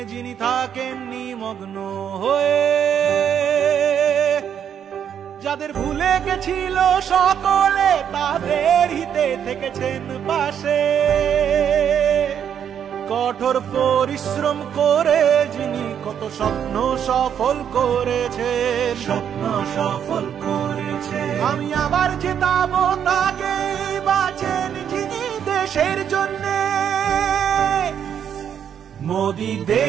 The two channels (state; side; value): quieter; left; 8.7 dB